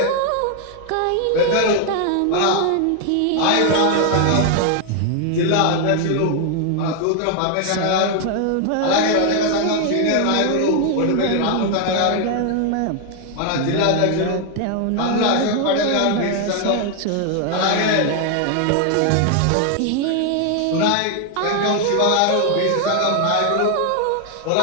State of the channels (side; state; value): both; different; correlation 0.00